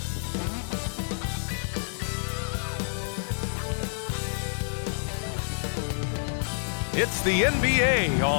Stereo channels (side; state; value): right; silent; digital silence